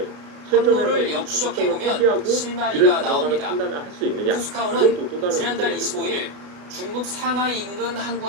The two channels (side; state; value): left; late; 33 ms